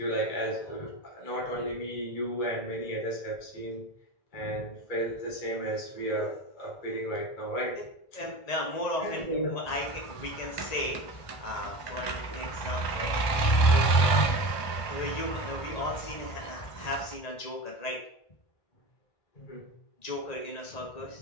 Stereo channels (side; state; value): right; late; 1.2 ms